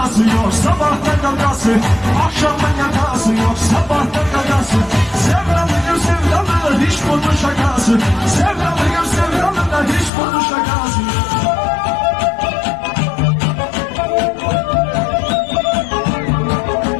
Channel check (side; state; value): right; drops out; at 10.1 s